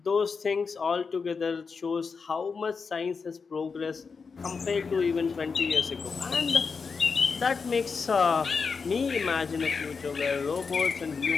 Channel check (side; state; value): right; quieter; 5.2 dB